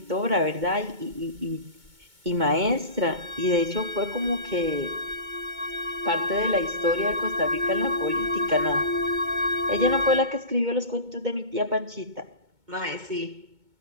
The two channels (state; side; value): late; left; 2.2 ms